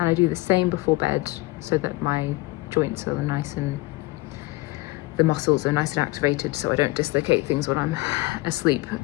I do the same before bed so that my joints are nice and the muscles are nice and activated, so I don't dislocate things when I'm asleep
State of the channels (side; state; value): right; quieter; 21.0 dB